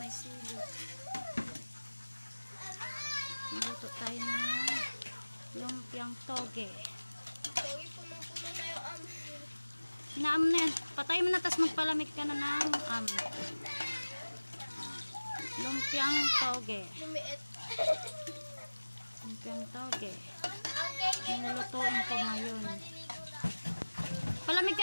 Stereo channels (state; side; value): inverted; both; correlation -1.00